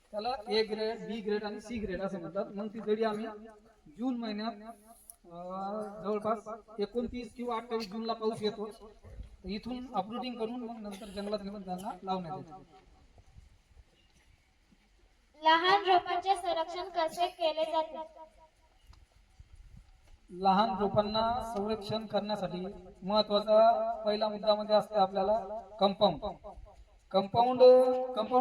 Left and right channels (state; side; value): identical; both; correlation 1.00